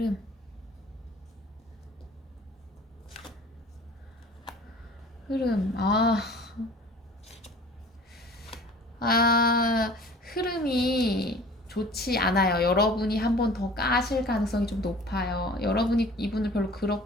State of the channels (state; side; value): normal; both; correlation 0.46